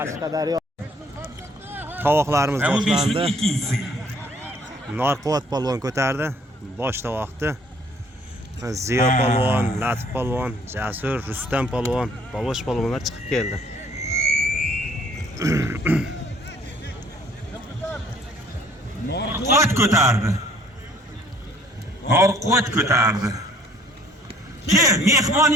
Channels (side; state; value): both; normal; correlation 0.59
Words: Tovoqlarimiz boshlandi. Narquvvat polvon ko'tardi. Bosh tovoqni. Ziyo polvon, Latif polvon, Jasur, Rustam polvon, Bobosh polvonlar chiqib keldi. Narquvvat ko'tardi. Narquvvat ko'tardi. Ke, mehmon